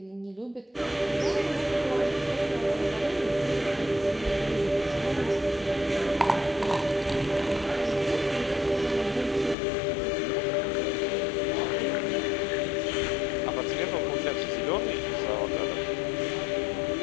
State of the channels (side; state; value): right; drops out; at 9.6 s